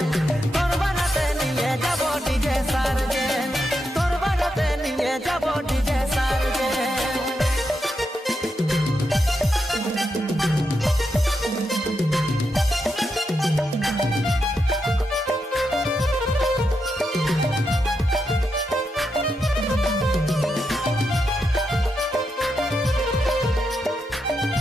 তোর বারাতে নিয়ে যাব ডিজে সার্জেন, তোর বারাতে নিয়ে যাব ডিজে সার্জেন।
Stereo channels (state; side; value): normal; both; correlation 0.84